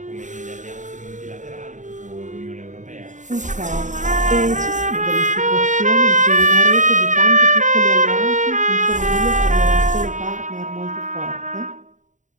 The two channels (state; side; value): late; left; 0.36 ms